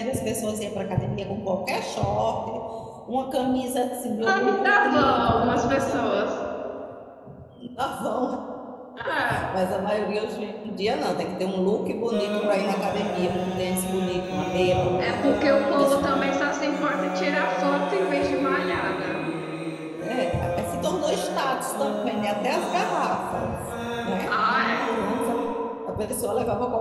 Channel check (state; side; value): identical; both; correlation 1.00